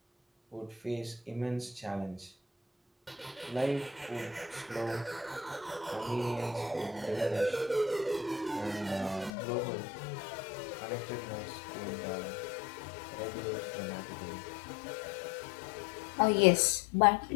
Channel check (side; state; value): right; drops out; at 9.3 s